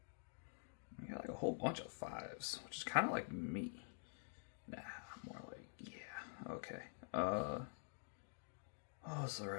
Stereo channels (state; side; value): silent; right; digital silence